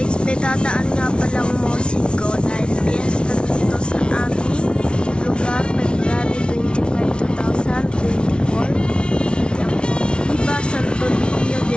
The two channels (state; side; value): late; right; 0.057 ms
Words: May dadaan nga palang musiko dahil fiesta dito sa aming lugar, February 25, 2024. Yan po. Viva Santo Niño de